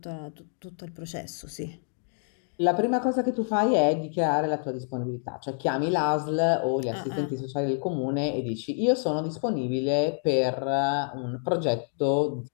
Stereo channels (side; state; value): right; silent; 59 dB below the other